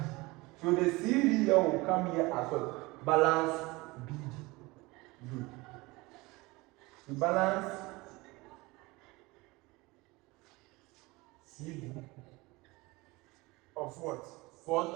So the CD here will come here as what? Balance BD. Good. The balance CD of what?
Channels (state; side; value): quieter; left; 22.9 dB